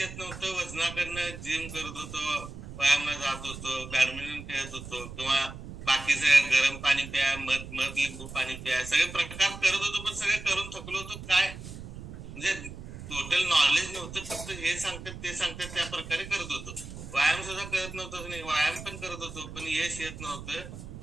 नव्हतं. वजनाकडनं जिम करत होतो, व्यायामला जात होतो, बॅडमिंटन खेळत होतो किंवा बाकीचे गरम पाणी प्या, मध लिंबू पाणी प्या, सगळे प्रकार करत होतो. पण सगळे करून थकलो होतो. काय म्हणजे टोटल नॉलेज नव्हतं. फक्त हे सांगतात ते सांगतात त्या प्रकारे करत होतो. व्यायाम सुद्धा करत नव्हतं. नाही, व्यायाम पण करत होतो पण यश येत नव्हतं.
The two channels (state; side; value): noise; right; rumble, 12 dB below the sound